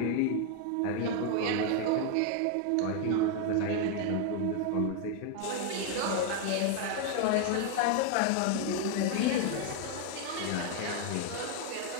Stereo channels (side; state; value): both; different; correlation 0.01